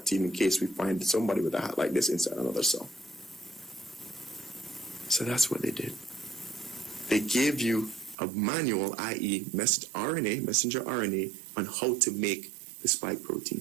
team in case we find somebody with a hat like this inside another cell. So that's what they did. They gave you a manual, i.e. messenger RNA, on how to make the spike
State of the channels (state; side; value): drops out; left; at 8.2 s